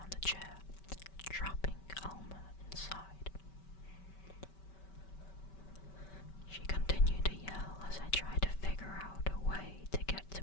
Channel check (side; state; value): right; late; 5.2 ms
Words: the chair, trapping Alma inside. She continued to yell as I tried to figure out a way to get